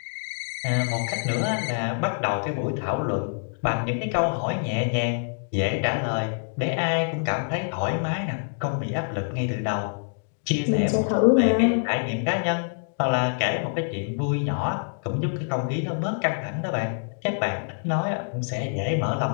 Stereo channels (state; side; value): silent; right; digital silence